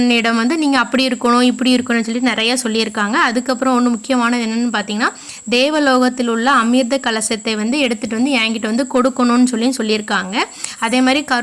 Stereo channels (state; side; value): identical; both; correlation 1.00